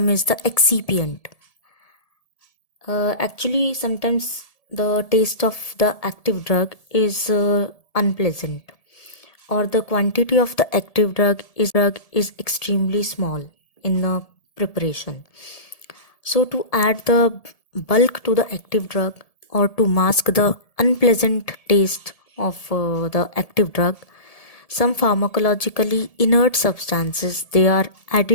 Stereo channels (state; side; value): late; right; 1.7 ms